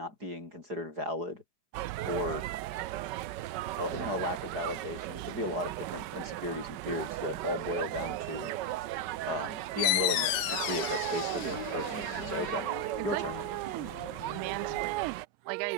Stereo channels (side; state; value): left; late; 4.5 ms